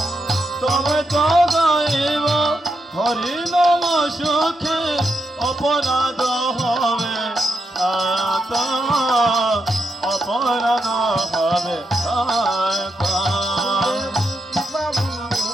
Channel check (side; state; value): both; normal; correlation 0.84